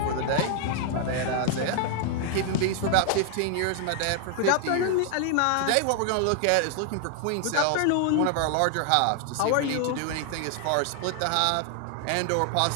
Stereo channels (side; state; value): both; different; correlation 0.00